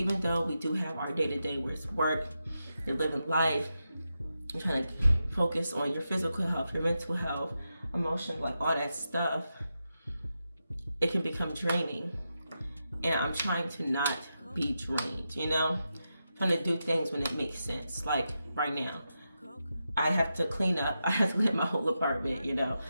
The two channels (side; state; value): both; inverted; correlation -0.88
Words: though we do have our day-to-day where it's work, you're living life, you're trying to focus on your physical health, your mental health, emotion, like all that stuff, it can become draining. And I'm trying to not be drained, you know? I'm trying to do things when it makes sense. Like right now, I have to clean up. I have to clean my whole apartment, you know?